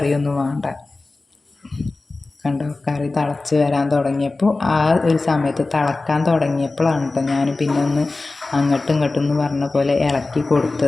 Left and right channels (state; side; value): quieter; right; 3.4 dB